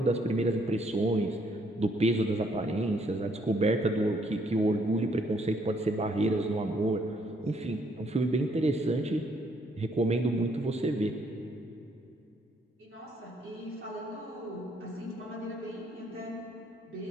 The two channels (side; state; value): both; normal; correlation 0.69